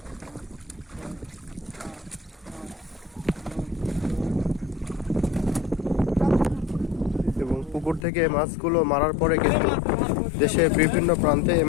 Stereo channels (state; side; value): drops out; right; at 8.1 s